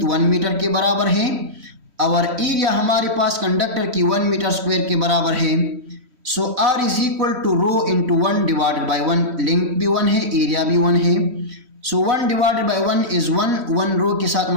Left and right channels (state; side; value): late; left; 3.1 ms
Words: 1 मीटर के बराबर है और एरिया हमारे पास कंडक्टर की 1 मीटर स्क्वायर के बराबर है। So R is equal to rho into 1 divided by 1। Length भी 1 है, एरिया भी 1 है। So 1 divided by 1 is 1 rho के साथ